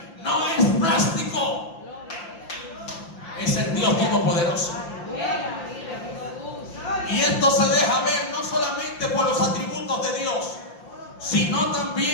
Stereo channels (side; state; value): right; late; 5.8 ms